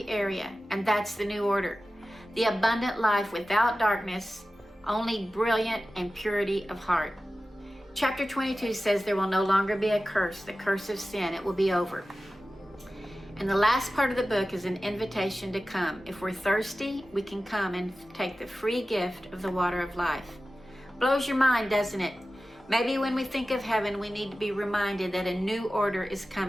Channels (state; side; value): normal; both; correlation 0.95